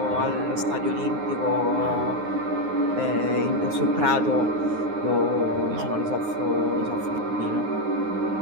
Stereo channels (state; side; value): late; left; 9.6 ms